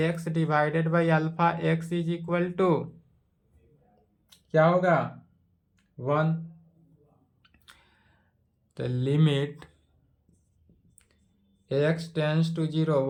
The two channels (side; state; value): both; identical; correlation 1.00